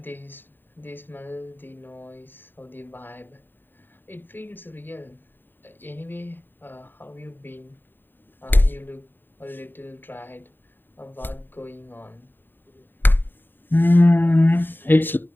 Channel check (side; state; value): right; late; 0.094 ms